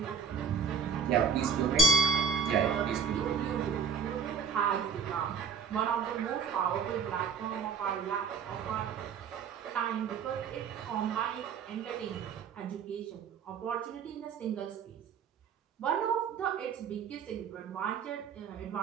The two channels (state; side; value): quieter; left; 6.3 dB